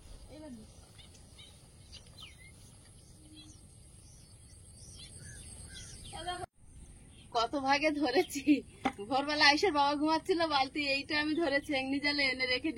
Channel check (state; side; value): identical; both; correlation 1.00